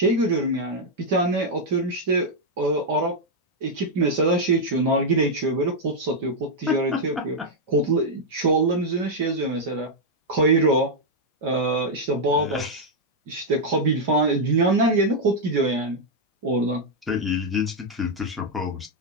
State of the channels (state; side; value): normal; both; correlation -0.02